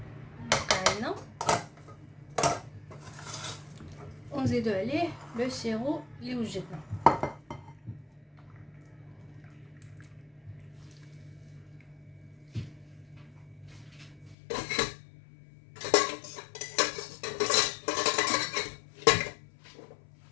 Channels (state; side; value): drops out; right; at 14.4 s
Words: بقى لنا ونزيدو عليه لو سيرو اللي وجدنا.